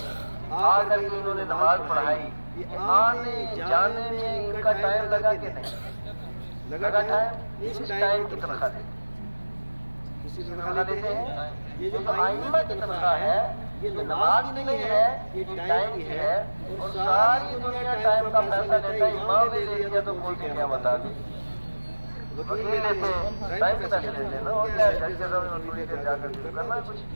آ کر کے انہوں نے نماز پڑھائی، آنے جانے میں ان کا ٹائم لگا کہ نہیں لگا؟ ٹائم اس ٹائم کی تنخواہ دیتے ہیں، کسی تنخواہ دیتے ہیں، یہ جو ائمہ کی تنخواہ ہے یہ نماز کی نہیں ہے، یہ ٹائم کی ہے، اور ساری دنیا ٹائم کا پیسہ لیتا ہے، امام نے لے لیا تو کوئی کیا بتا دے، وکیل لیتے ہیں ٹائم کے پیسے لیتے ہیں نا، اور کیا جج کے سامنے تھوڑی دیر جا کر کے کرنا ہے کچھ،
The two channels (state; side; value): inverted; both; correlation -1.00